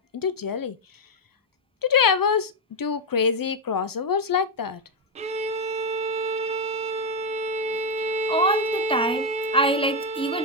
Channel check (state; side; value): normal; both; correlation 0.04